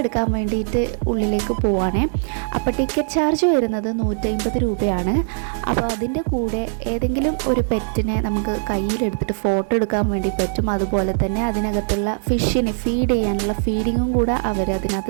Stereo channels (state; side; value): silent; left; digital silence